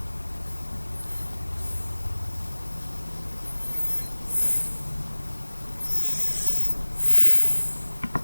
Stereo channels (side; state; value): both; inverted; correlation -1.00